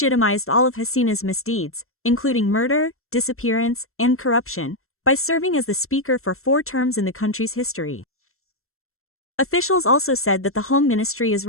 all of Hasina's misdeeds, including murder, disappearance, and corruption, by serving as the speaker for 4 terms in the country's history. Officials also said that the Home Ministry is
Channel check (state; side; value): late; right; 0.62 ms